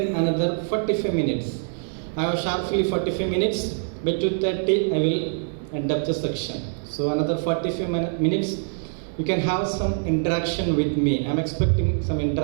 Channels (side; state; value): left; silent; digital silence